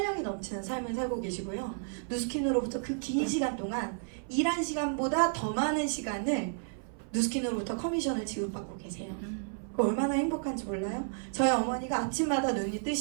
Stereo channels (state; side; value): silent; left; 56 dB below the other